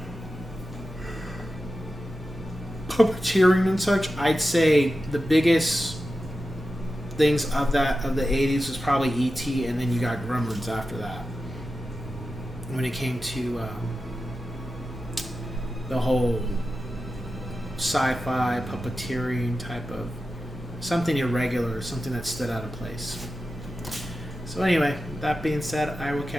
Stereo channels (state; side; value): normal; both; correlation 0.93